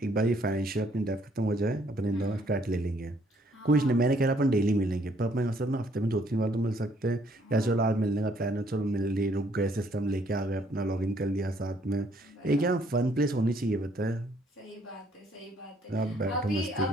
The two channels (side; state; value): both; normal; correlation 0.66